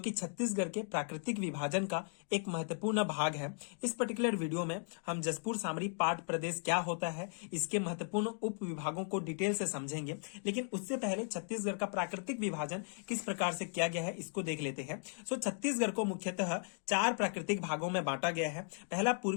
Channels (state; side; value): silent; right; 53 dB below the other